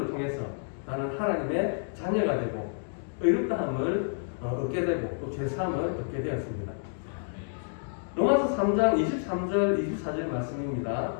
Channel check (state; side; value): silent; right; digital silence